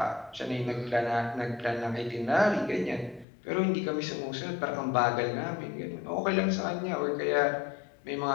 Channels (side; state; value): right; drops out; at 3.2 s